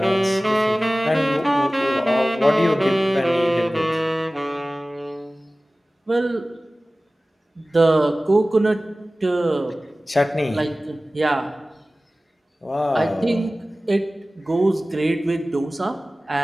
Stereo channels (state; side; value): normal; both; correlation 0.97